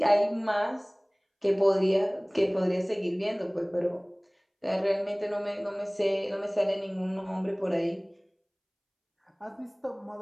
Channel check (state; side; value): identical; both; correlation 1.00